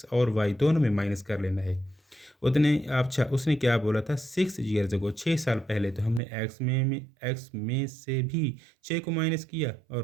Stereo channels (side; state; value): left; drops out; at 6.2 s